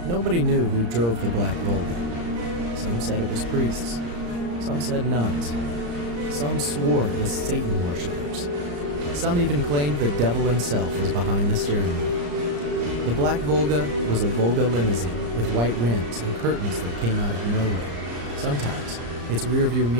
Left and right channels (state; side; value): late; left; 34 ms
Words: Nobody knew who drove the Black Volga. Some said it was priests. Some said nuns. Some swore it was Satan worshippers. Some even claimed the devil himself was behind the steering wheel. The Black Volga was a Volga limousine with white rims and curtains that came out of nowhere. Sometimes, its rearview